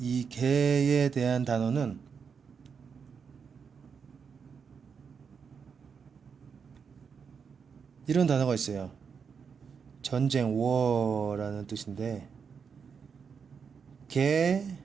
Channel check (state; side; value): quieter; left; 6.3 dB